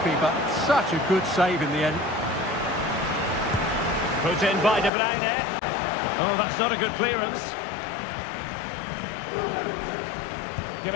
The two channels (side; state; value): right; drops out; at 4.9 s